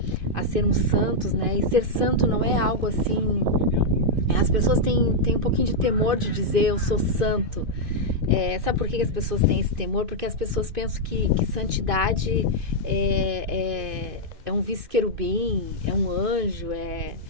a sermos santos, né? E ser santo não é algo assim. As pessoas têm um pouquinho de temor de dizer eu sou santo. Sabe por que as pessoas têm esse temor? Porque as pessoas pensam que santidade é um vice-querubim, é um anjo,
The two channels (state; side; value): late; left; 2.5 ms